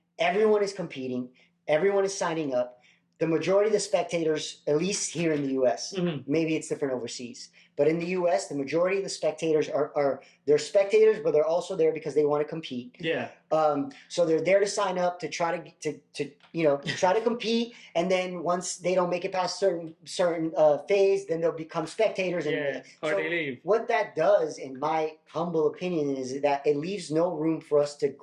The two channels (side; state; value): both; identical; correlation 1.00